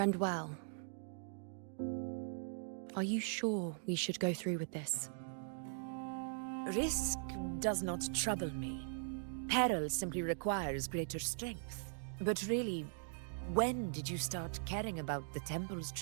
well. Are you sure we should go through with this? Risk does not trouble me. Peril simply requires greater strength. But really, when did you start caring about the temple's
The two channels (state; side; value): silent; left; digital silence